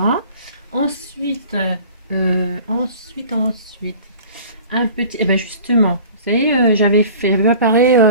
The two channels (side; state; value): both; inverted; correlation -0.44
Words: Ensuite, un petit... Eh ben justement, vous savez, j'avais préparé